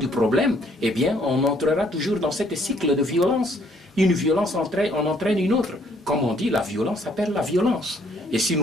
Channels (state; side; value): normal; both; correlation 0.65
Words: problème, eh bien, on entrera toujours dans ce cycle de violence. Une violence en entraîne une autre. Comme on dit, la violence appelle la violence. Et si